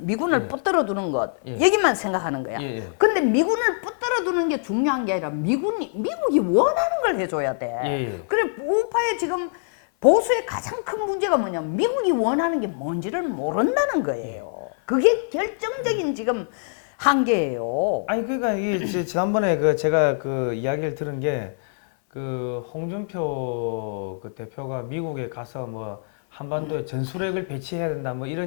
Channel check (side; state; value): right; silent; 59 dB below the other